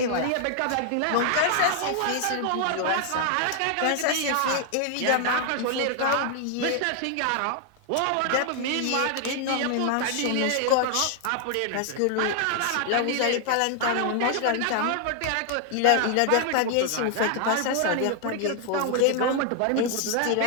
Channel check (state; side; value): different; both; correlation 0.00